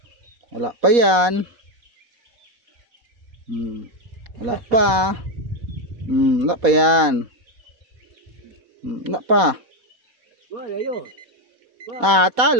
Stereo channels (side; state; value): left; late; 4.1 ms